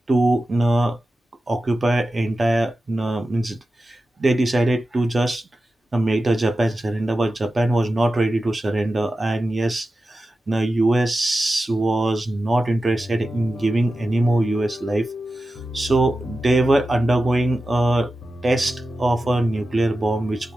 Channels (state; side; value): normal; both; correlation 0.92